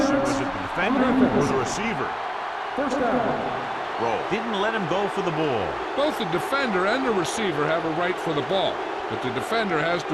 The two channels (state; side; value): identical; both; correlation 1.00